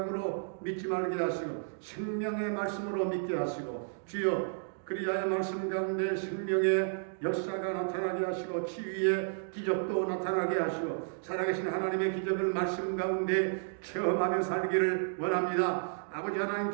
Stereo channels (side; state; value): left; silent; digital silence